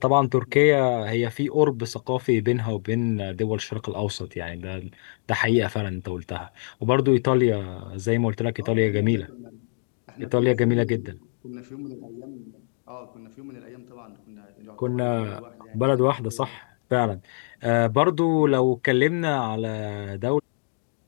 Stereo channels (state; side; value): silent; right; digital silence